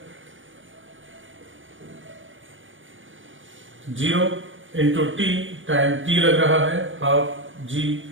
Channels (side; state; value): left; late; 0.57 ms